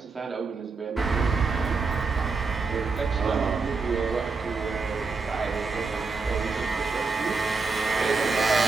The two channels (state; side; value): quieter; left; 4.4 dB